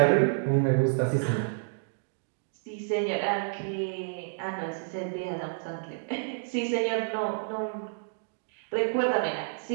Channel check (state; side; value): silent; left; digital silence